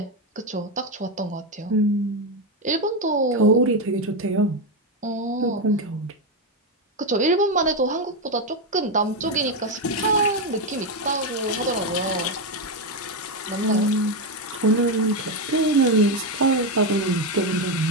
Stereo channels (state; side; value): normal; both; correlation 0.08